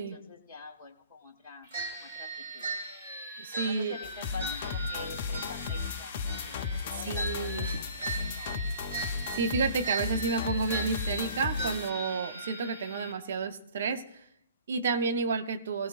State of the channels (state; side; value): inverted; both; correlation -0.50